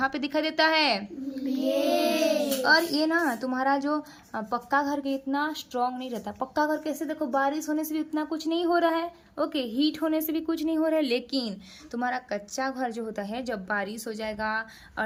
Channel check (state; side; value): identical; both; correlation 1.00